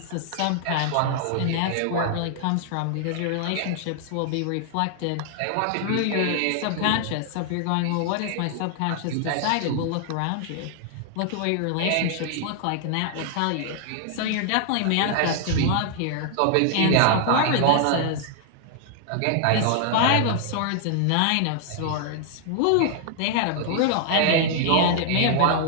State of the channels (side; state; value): both; different; correlation 0.00